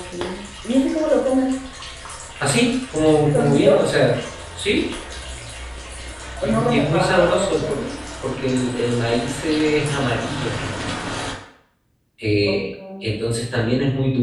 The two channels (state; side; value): identical; both; correlation 1.00